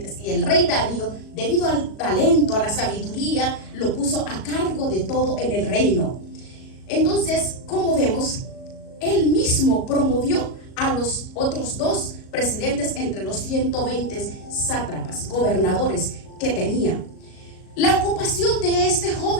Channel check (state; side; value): late; right; 37 ms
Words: y el rey Darío, debido al talento, a la sabiduría, lo puso a cargo de todo en el reino. Entonces, como vemos, él mismo promovió a los otros 2 presidentes entre los 120 sátrapas, gobernadores que tenía. La ocupación de este